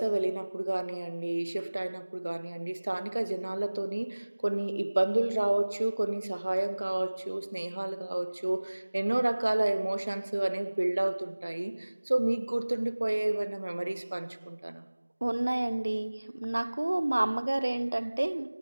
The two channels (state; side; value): inverted; both; correlation -1.00